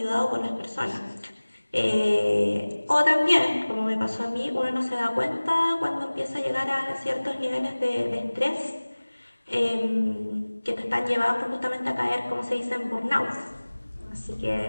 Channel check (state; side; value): inverted; both; correlation -1.00